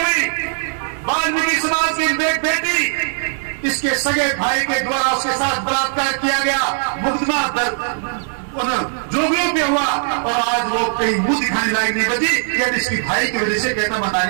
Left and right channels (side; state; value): left; silent; 59 dB below the other